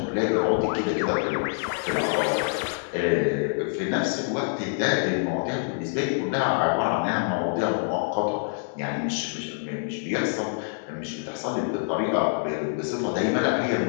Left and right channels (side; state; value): right; silent; digital silence